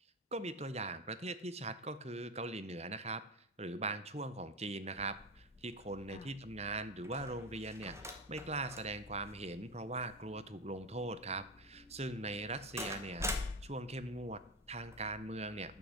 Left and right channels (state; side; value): normal; both; correlation 0.19